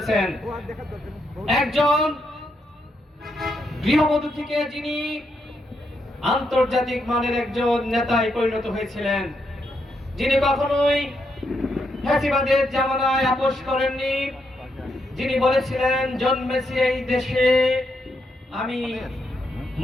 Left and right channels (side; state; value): both; normal; correlation 0.80